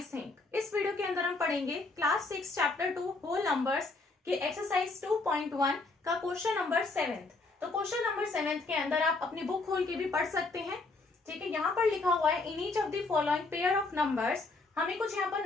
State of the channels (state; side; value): quieter; right; 3.5 dB